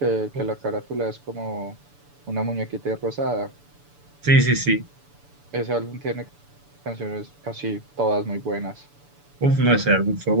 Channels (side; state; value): left; late; 6.9 ms